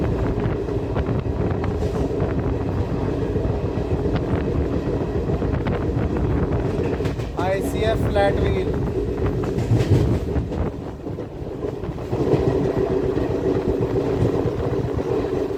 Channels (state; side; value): identical; both; correlation 1.00